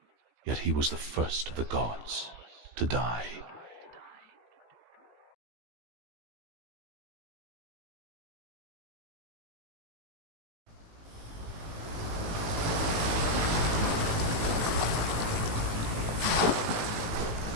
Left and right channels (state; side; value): late; left; 18 ms